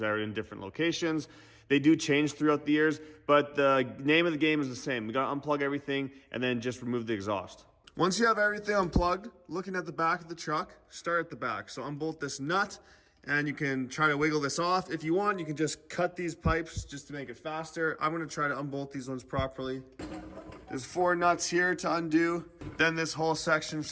are in different locations. They do change throughout the years, but the name of the game is the same. We gotta unplug everything and then just remove the exhaust. Once you have everything unplugged, looking at the back of the truck, start at the back. So unbolt this nut, and you can try to wiggle this off. If you want, you can just cut these pipes just to make it faster. I'm gonna try to unbolt these ones properly. There's 4 nuts here to undo. Then this whole section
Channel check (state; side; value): identical; both; correlation 1.00